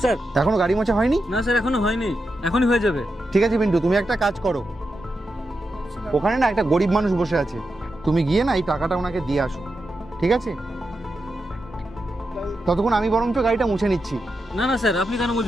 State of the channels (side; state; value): both; normal; correlation 0.88